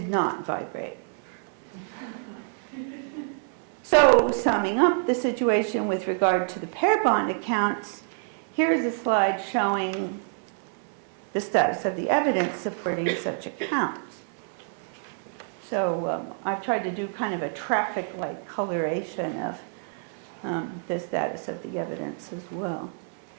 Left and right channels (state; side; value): silent; left; 60 dB below the other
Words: not vibrate. So, summing up the situation with regard to the pair bond accounts, here's a slide showing the status of the evidence supporting such accounts. So I've tried to do kind of a traffic-like coloration of the status of the evidence as well.